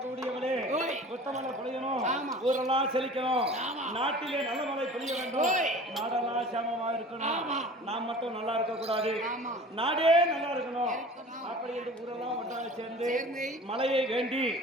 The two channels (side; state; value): both; normal; correlation 0.42